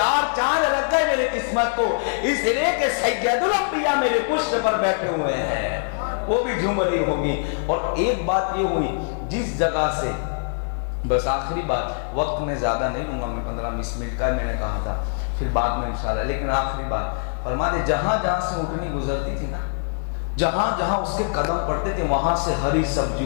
چاند لگ گئے میری قسمت کو، اس لیے کہ سید الانبیاء میرے پشت پر بیٹھے ہوئے ہیں، وہ بھی جھوم رہی ہوگی۔ اور ایک بات یہ ہوئی جس جگہ سے، بس آخری بات، وقت میں زیادہ نہیں لوں گا، میں 15-20 منٹ کا میں نے کہا تھا، پھر بعد میں انشاءاللہ، لیکن آخری بات فرما دے، جہاں جہاں سے اونٹنی گزرتی تھی نا، جہاں جہاں اس کے قدم پڑتے تھے وہاں سے ہری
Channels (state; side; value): silent; right; digital silence